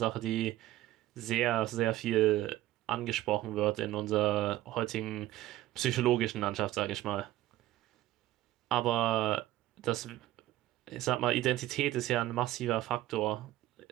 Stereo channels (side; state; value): left; quieter; 15.0 dB